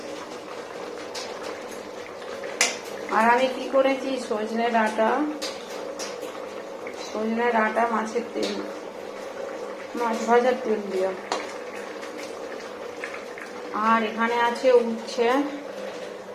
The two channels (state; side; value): identical; both; correlation 1.00